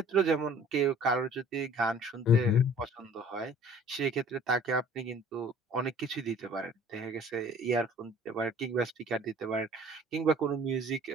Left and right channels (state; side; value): normal; both; correlation 0.50